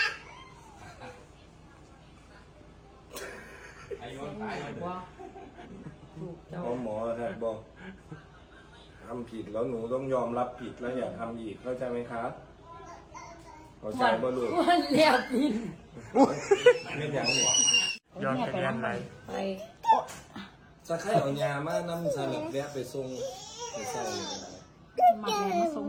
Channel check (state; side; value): identical; both; correlation 1.00